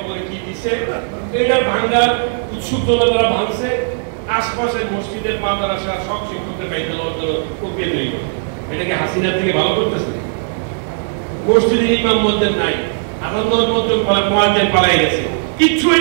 কি দিছে, এটার ভাঙ্গার উৎসুক জনতারা ভাঙছে। আশপাশের মসজিদের মাদ্রাসা সব শিক্ষকদের বাইরে প্রক্রিয়া তৈরি করে। এটাকে হাসিনার থেকে ভালো করতেছে। মসজিদের ইমাম মসজিদ নাই, আনন্দর মধ্যে মোয়াজ্জিন পালাই গেছে, কিচ্ছু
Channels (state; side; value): silent; left; 68 dB below the other